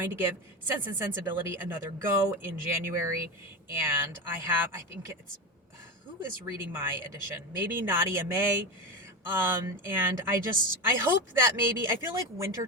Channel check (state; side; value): normal; both; correlation 0.19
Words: to give Sense and Sensibility another go in January. And I think it's, who is reading my edition? Maybe Nadia May. And I hope that maybe, I feel like